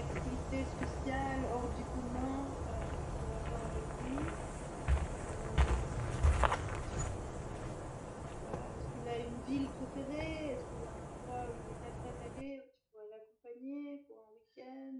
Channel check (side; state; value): both; identical; correlation 1.00